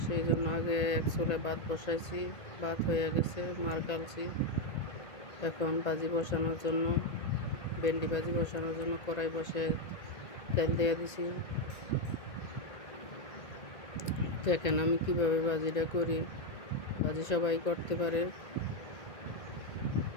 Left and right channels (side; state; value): right; late; 1.9 ms